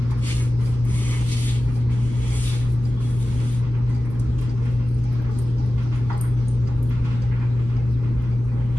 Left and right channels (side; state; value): both; normal; correlation 0.95